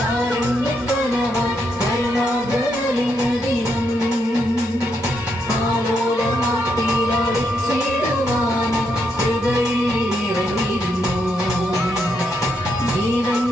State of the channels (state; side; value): normal; both; correlation 0.79